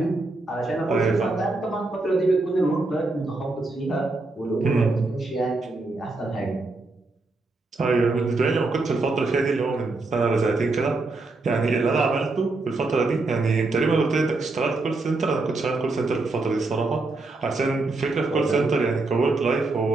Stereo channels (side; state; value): left; quieter; 3.3 dB